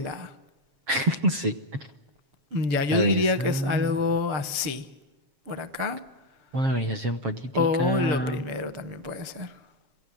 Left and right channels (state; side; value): late; left; 6.8 ms